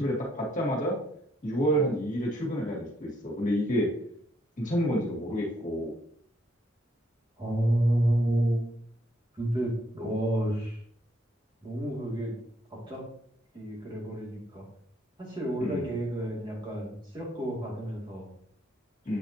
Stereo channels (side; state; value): both; normal; correlation 0.72